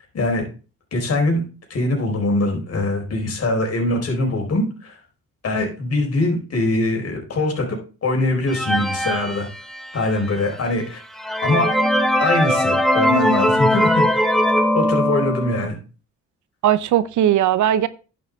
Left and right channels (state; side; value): normal; both; correlation 0.49